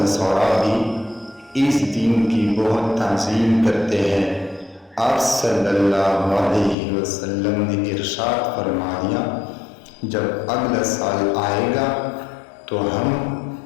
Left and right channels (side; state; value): right; drops out; at 6.8 s